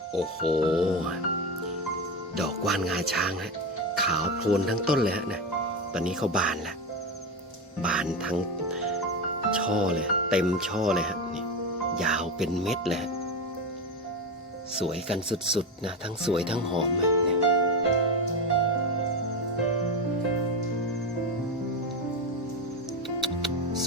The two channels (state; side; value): normal; both; correlation 0.18